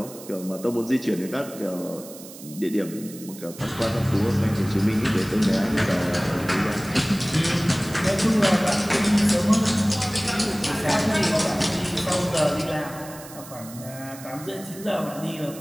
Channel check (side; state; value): right; noise; hiss, 16 dB below the sound